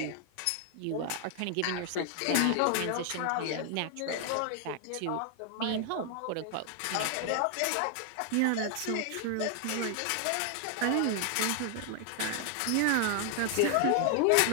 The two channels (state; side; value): different; both; correlation 0.00